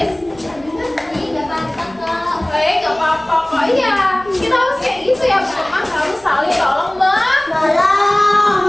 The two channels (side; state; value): left; noise; rumble, 26 dB below the sound